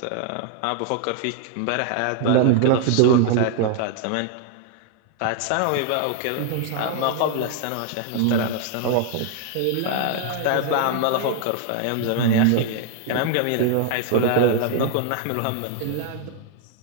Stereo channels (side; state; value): both; different; correlation 0.00